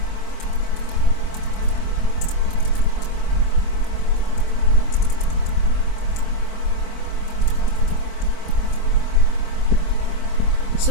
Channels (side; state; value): right; late; 25 ms